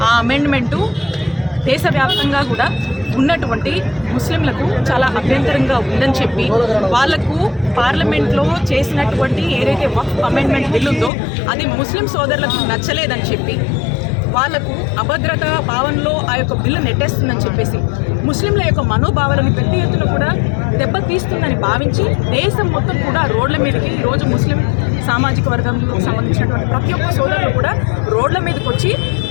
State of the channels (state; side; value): drops out; right; at 11.1 s